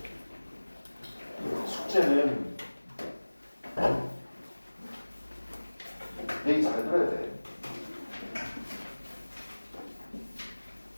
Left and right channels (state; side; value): inverted; both; correlation -1.00